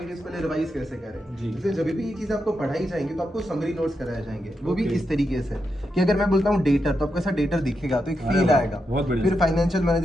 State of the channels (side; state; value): both; normal; correlation 0.85